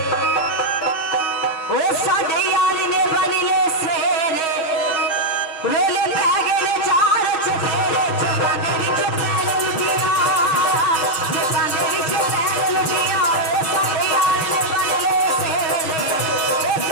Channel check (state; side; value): late; right; 6.3 ms